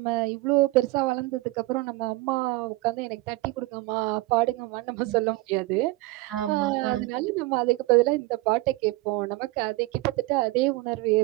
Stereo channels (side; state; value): left; quieter; 20.1 dB